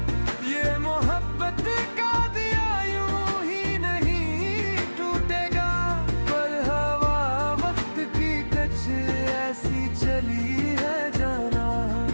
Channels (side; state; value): both; inverted; correlation -1.00